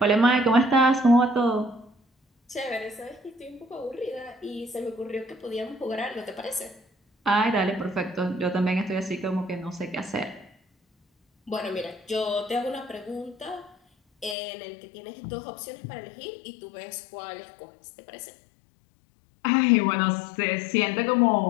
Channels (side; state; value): right; drops out; at 14.4 s